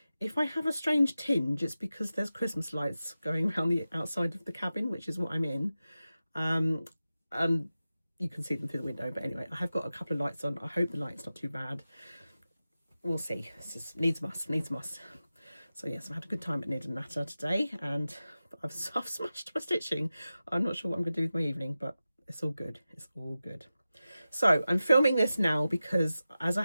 If I have a strange tinge, it's because there's Christmas lights going around the outside of the cabin, which is what I'm in. And you can see them through the window, but anyway, I have got a couple of lights on. I hope the light's not too bad. We'll see. It's just needs must. So yes, I've had a good time at knit and natter today, and I've smashed my stitching. I'm not sure what I'm going to do with my evening, but it's all good. It's all good. So I'm filming this now because, as I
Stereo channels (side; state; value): both; inverted; correlation -0.93